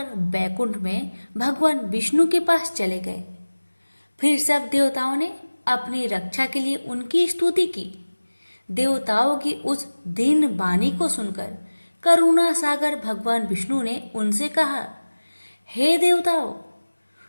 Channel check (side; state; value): both; inverted; correlation -1.00